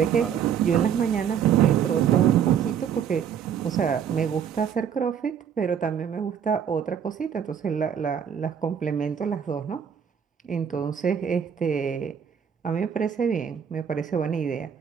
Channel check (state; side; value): quieter; left; 8.1 dB